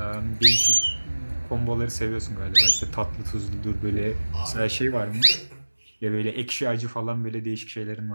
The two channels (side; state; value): both; inverted; correlation -1.00